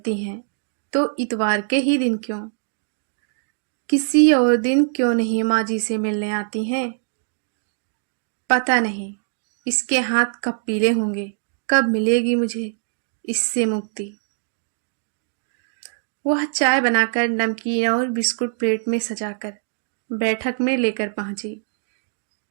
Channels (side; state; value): left; silent; digital silence